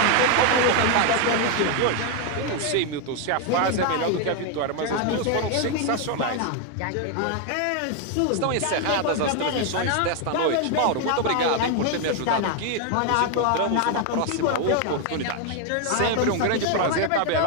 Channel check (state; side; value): different; both; correlation 0.01